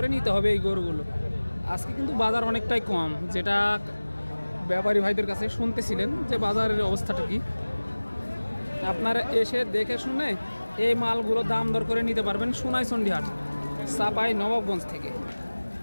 নিতে হবে এই গরুগুলো। আজকে কিন্তু বাজার অনেকটাই কম, যেটা ব্যাপারী ভাইদের কাছে শুনতেছিলেন যে বাজারের অবস্থাটা কি। আপনারা এসে দেখে শুনে এই মালগুলো দাম দর করে নিতে পারবেন সোনাইচন্ডী হাট, চাপাই নবাবগঞ্জ থেকে।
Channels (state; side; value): inverted; both; correlation -1.00